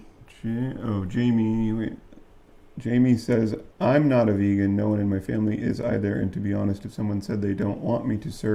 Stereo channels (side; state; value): both; identical; correlation 1.00